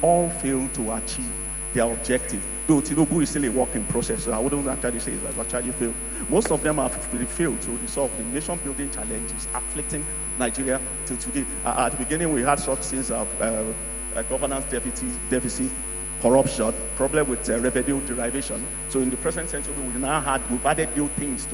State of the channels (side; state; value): both; normal; correlation 0.96